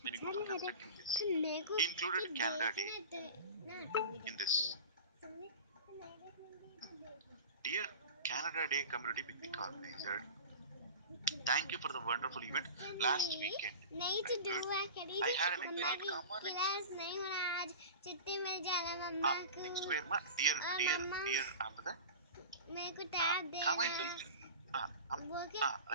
when you go for constructing this. He included Canada Day in this. Dear Canada Day Community Picnic Organizer, thank you for the wonderful event last weekend. Good. I had an enjoyable. Next where ma dear after that. Comment like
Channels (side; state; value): both; inverted; correlation -0.33